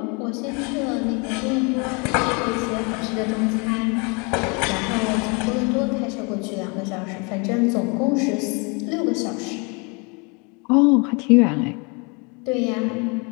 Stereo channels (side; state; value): right; quieter; 31.8 dB